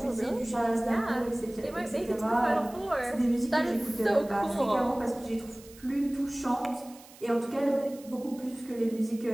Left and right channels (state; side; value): noise; right; hiss, 21 dB below the sound